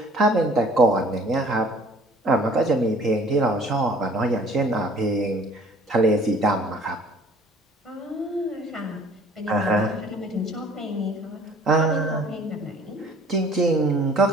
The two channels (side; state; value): both; normal; correlation 0.53